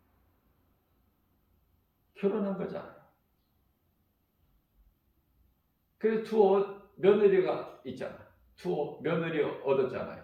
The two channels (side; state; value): both; identical; correlation 1.00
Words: 결혼한 거잖아요. 그래서 두 며느리가 있잖아. 두 며느리